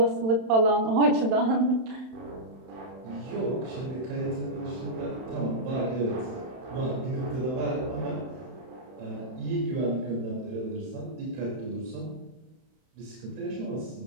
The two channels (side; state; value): left; late; 31 ms